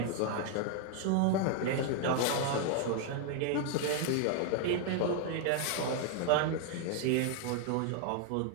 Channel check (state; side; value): different; both; correlation 0.00